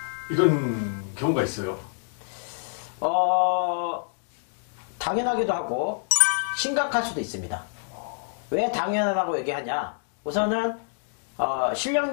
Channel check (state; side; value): silent; right; digital silence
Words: 이런 경우가 있어요. 당연하기도 하고 심각할 수도 있습니다. 왜 당연하다고 얘기하냐? 우선은